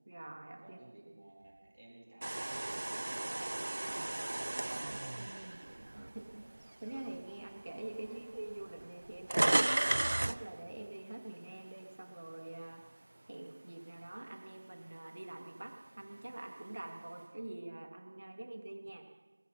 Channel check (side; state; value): both; inverted; correlation -1.00